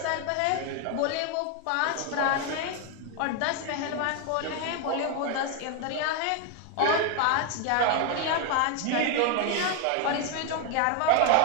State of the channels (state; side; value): different; both; correlation 0.01